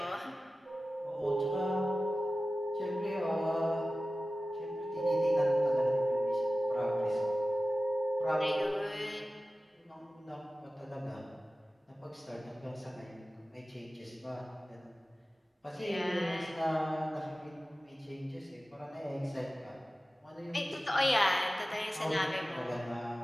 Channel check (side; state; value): both; normal; correlation 0.95